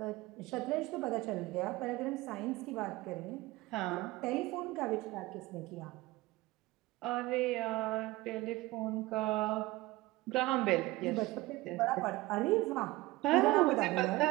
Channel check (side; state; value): left; quieter; 19.6 dB